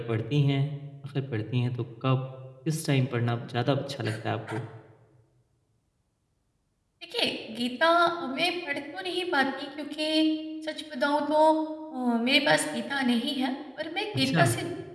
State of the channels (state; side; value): identical; both; correlation 1.00